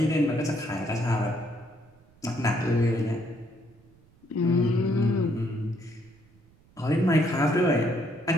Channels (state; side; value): noise; right; rumble, 30 dB below the sound